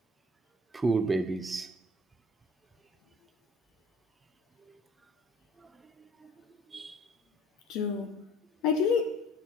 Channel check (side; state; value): both; normal; correlation 0.52